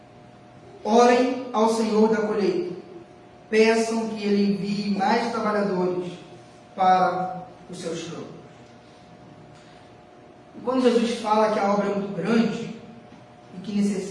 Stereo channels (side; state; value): both; identical; correlation 1.00